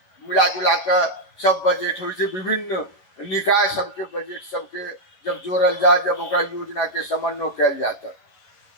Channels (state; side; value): late; right; 11 ms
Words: मिला जुला कर सब बजट हो, विभिन्न निकाय सबके बजट सबके जब जोड़ल जाए, जब ओकरा योजना के समन्वय कैल जाता,